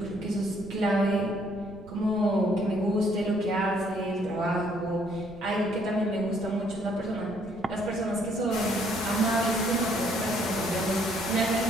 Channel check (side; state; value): right; noise; rumble, 20 dB below the sound